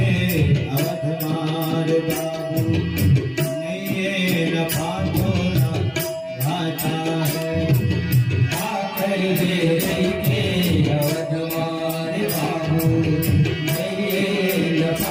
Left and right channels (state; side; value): identical; both; correlation 1.00